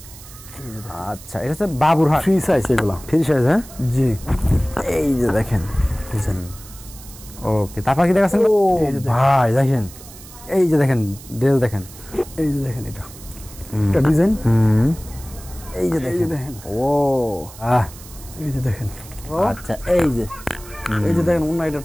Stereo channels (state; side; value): noise; right; hiss, 18 dB below the sound